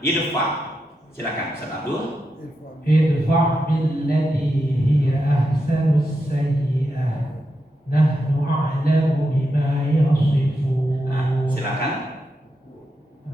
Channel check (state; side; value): normal; both; correlation 0.86